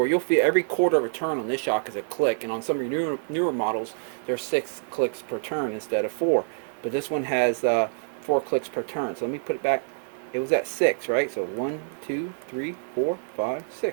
you'll feel every quarter of a turn on this shock is a click, and on some of your newer models there's 6 clicks per turn instead of 4, but this one has 4 clicks per turn. So let me put it back. It was at 6, right? So 1, 2, 3, 4, 5,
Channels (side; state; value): left; silent; digital silence